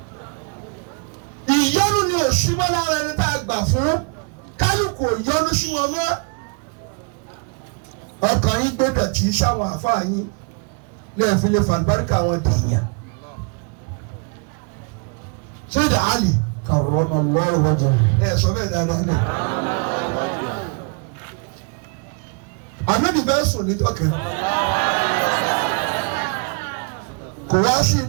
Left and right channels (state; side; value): quieter; left; 36.1 dB